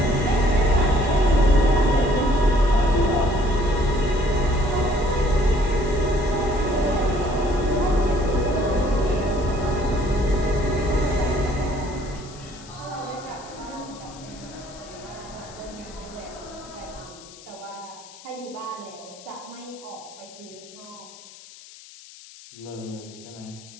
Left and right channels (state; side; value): noise; left; hiss, 19 dB below the sound